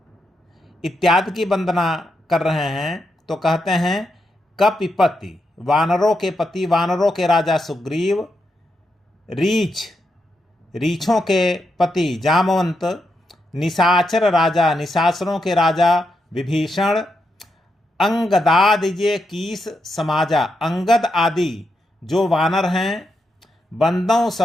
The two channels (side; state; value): both; normal; correlation 0.83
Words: इत्यादि की वंदना कर रहे हैं। तो कहते हैं कपिपति, वानरों के पति, वानरों के राजा सुग्रीव। रीछ, रीछों के पति जामवंत। निशाचर राजा, निशाचरों के राजा विभीषण। अंगदादिजे कीस समाजा, अंगद आदि जो वानर हैं। बंदों